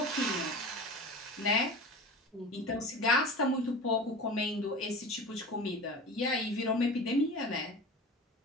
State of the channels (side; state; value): both; normal; correlation 0.33